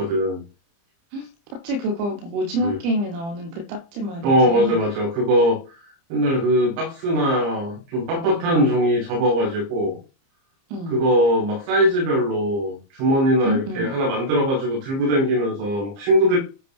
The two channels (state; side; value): late; left; 30 ms